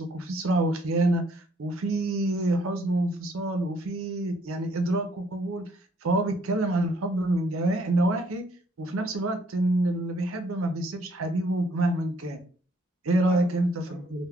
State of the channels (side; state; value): both; normal; correlation 0.66